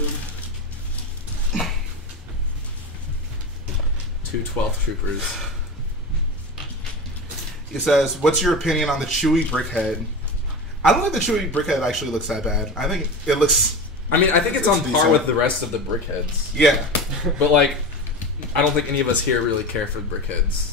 2 12th troopers. It says, what's your opinion on the Chewie brickhead? I don't think the Chewie brickhead actually looks that bad. I think it looks... I mean, I think it's on par decent with the rest of the brickheads. Yeah. But, like, I don't think any of us here really care for brickheads.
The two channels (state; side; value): normal; both; correlation 0.26